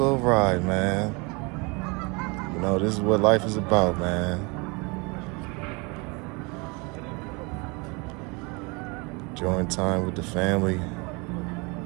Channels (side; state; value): left; quieter; 28.8 dB